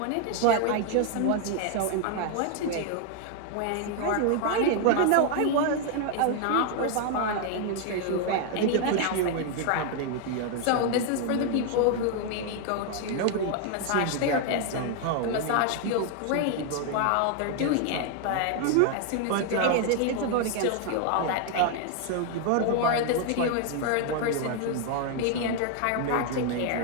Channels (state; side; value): different; both; correlation 0.00